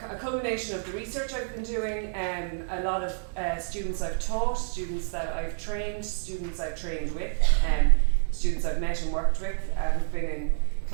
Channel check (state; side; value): silent; left; digital silence